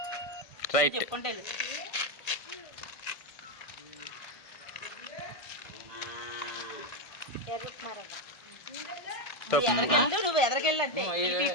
రైట్. చెప్పుకుంటే ఎర్ర ఉప్మా రవ్వ. నువ్వు ఎదరికెళ్ళంటే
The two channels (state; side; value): late; right; 1.6 ms